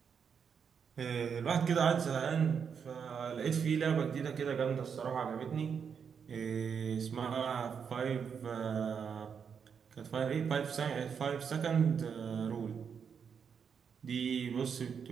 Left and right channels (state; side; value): quieter; left; 6.8 dB